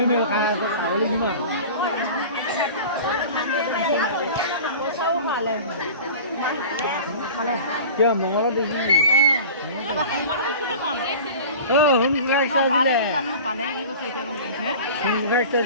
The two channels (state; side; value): inverted; both; correlation -0.38